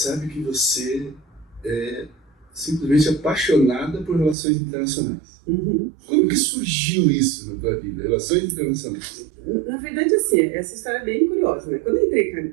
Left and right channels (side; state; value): left; drops out; at 4.4 s